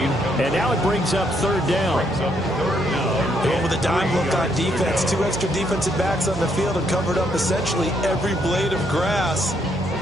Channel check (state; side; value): noise; right; hum, 11 dB below the sound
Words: and now it brings up 3rd down. And with a dime look on defense, 2 extra defensive backs on the field and covered up essentially every blade of grass.